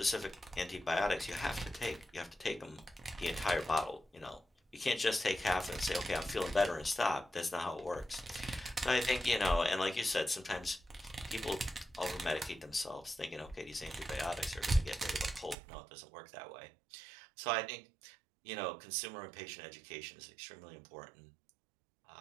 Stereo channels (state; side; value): drops out; left; at 15.6 s